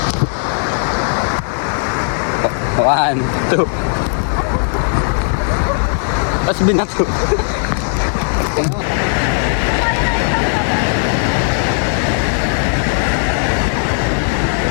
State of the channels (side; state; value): right; silent; 69 dB below the other